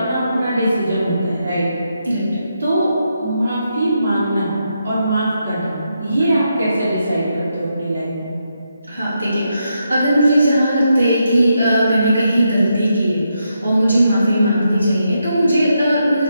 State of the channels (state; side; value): inverted; both; correlation -0.82